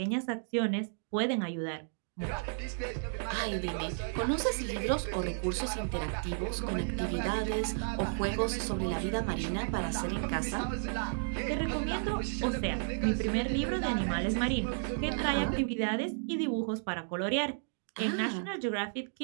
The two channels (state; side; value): silent; left; digital silence